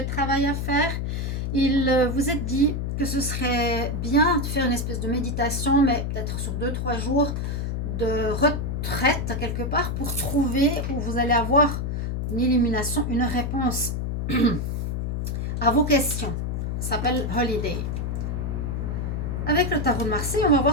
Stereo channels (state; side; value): noise; left; hum, 1 dB below the sound